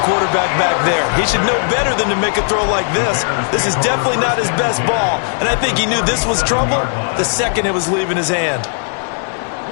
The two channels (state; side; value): silent; right; digital silence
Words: quarterback back there. He should know better than to make a throw like this. This is definitely not his best ball, and I think he knew this was trouble the second it was leaving his hand.